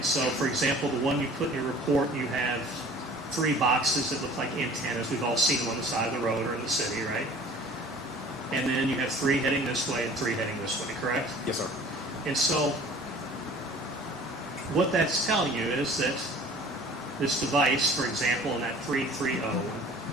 so, for example, the one you put in your report, you have 3 boxes that look like antennas. We've all seen them on the side of the road or in the city, right? And then you have 3 heading this way and 3 heading this way, correct? Yes, sir. And so what that's telling you is that this device, for example, in that 330,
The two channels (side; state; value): both; normal; correlation 0.47